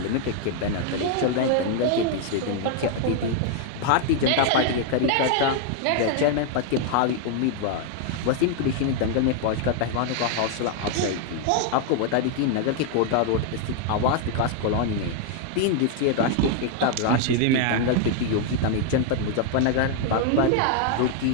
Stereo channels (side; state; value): both; different; correlation 0.00